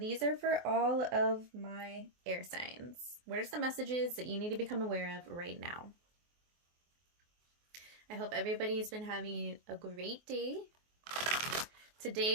are for all of my air signs. What are some messages that you need to become aware of right now? I hope everybody's been having a great day.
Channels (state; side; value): late; left; 24 ms